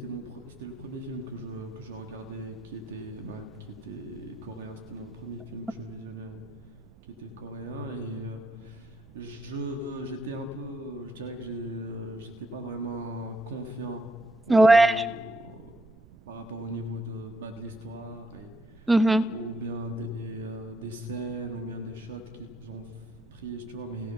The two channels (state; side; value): noise; right; rumble, 21 dB below the sound